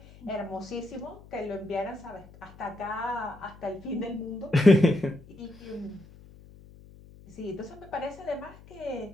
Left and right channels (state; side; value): noise; left; hum, 21 dB below the sound